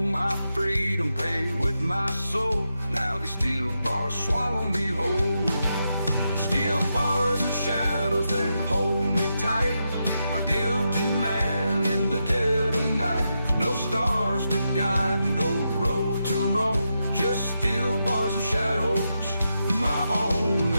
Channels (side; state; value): both; inverted; correlation -0.85